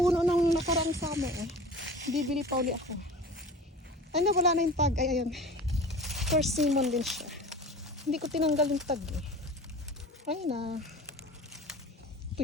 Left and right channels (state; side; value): normal; both; correlation 0.38